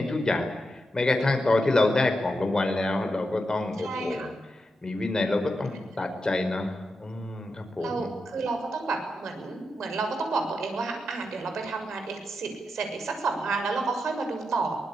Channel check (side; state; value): both; normal; correlation 0.86